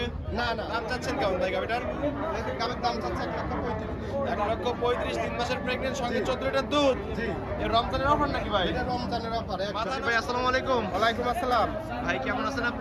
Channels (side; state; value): both; identical; correlation 1.00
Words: না না, দাম চাচ্ছেন কেমন ভাই গাবিটার? গাবের দাম চাচ্ছে 1,35,000। 1,35,000, 3 মাসের প্রেগনেন্ট, সঙ্গে 14 লিটার দুধ। জি, এর রমজানের অফার নাকি ভাই? এটা রমজানের অফার। মাথান ভাই আসসালামু আলাইকুম। ওয়ালাইকুম আসসালাম। ভাই কেমন আছেন